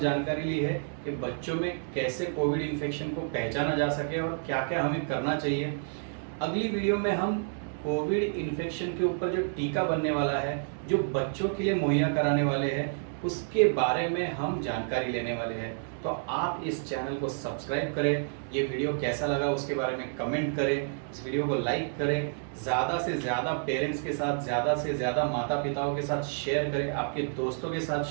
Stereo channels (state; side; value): silent; left; digital silence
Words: ली है कि बच्चों में कैसे कोविड इन्फेक्शन को पहचाना जा सके और क्या क्या हमें करना चाहिए। अगली वीडियो में हम कोविड इन्फेक्शन के ऊपर जो टीका बनने वाला है, जो बच्चों के लिए मुहैया कराने वाले हैं, उसके बारे में हम जानकारी लेने वाले हैं। तो आप इस चैनल को सब्सक्राइब करें, ये वीडियो कैसा लगा उसके बारे में कमेंट करें, इस वीडियो को लाइक करें, ज़्यादा से ज़्यादा पेरेंट्स के साथ, ज़्यादा से ज़्यादा माता पिताओं के साथ शेयर करें, आपके दोस्तों के साथ